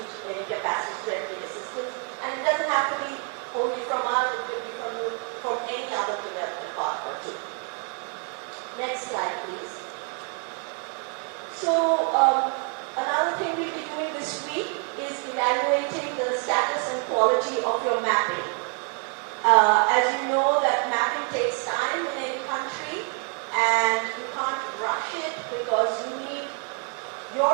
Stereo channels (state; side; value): quieter; left; 37.6 dB